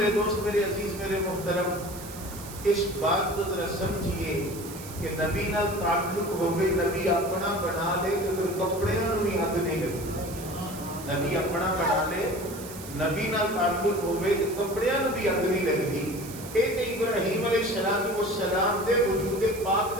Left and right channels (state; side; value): noise; right; hiss, 14 dB below the sound